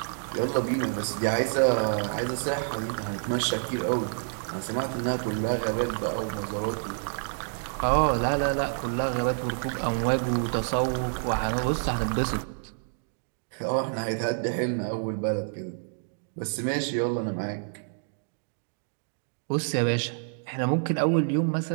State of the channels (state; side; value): silent; left; digital silence